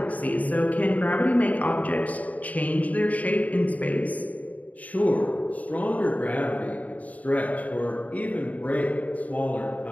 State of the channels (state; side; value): late; right; 0.072 ms